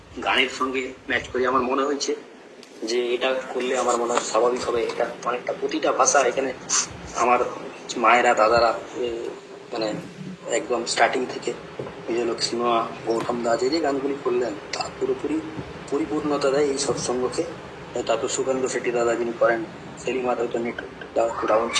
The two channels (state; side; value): identical; both; correlation 1.00